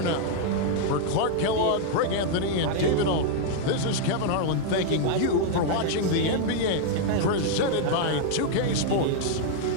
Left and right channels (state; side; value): different; both; correlation 0.00